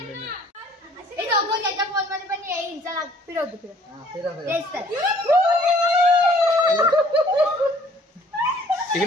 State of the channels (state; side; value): normal; both; correlation 0.57